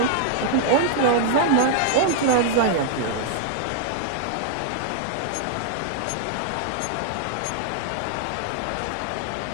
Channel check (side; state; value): both; different; correlation -0.01